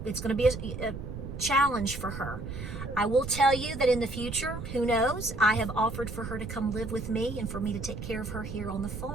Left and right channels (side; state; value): right; noise; rumble, 8 dB below the sound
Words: going to be a challenge for her. I will tell you that in the future, who knows, I have offered for her to come live with me and for me to take care of her here on the